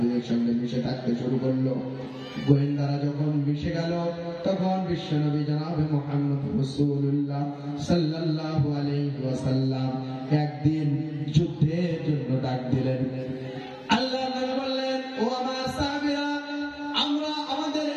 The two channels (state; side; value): identical; both; correlation 1.00